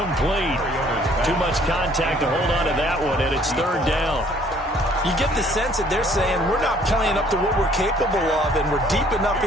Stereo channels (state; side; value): normal; both; correlation 0.59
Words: Too much contact to hold on to that one, and it's third down. You get the sense that they're saying we're not playing up to what we're capable of, and we're deep enough